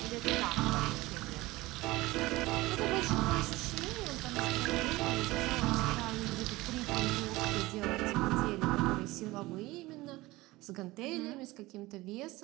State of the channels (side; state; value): left; quieter; 19.8 dB